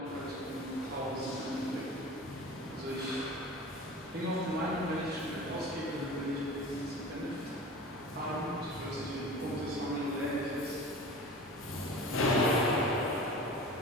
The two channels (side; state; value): both; normal; correlation 0.37